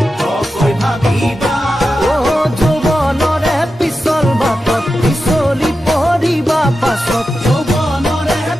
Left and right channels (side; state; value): both; normal; correlation 0.91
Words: ও যৌৱনৰে পিছল বাটত পিছলি পৰিবা পাছত